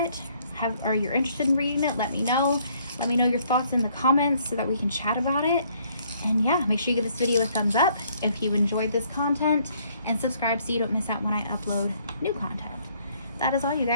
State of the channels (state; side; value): inverted; both; correlation -0.65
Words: or you're interested in reading it, let me know. Let me know your thoughts in the comments so that we can chat about it. And yeah, make sure you give this video a thumbs up if you enjoyed this content, and subscribe so you don't miss out when I upload new content. That is all, you